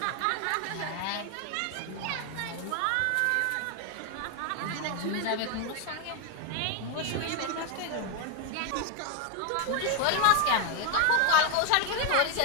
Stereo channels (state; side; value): different; both; correlation 0.01